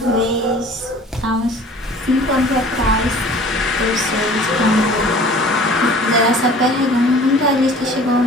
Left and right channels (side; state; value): both; normal; correlation 0.47